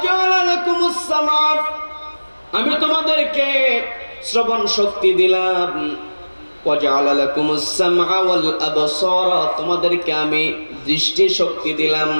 লাকুমুস সামা, আমি তোমাদেরকে শ্রবণ শক্তি দিলাম। ওয়াজআলা লাকুমুস সামআ ওয়াল আবসারা, তোমাদেরকে আমি দৃষ্টি শক্তি দিলাম।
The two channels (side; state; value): both; inverted; correlation -1.00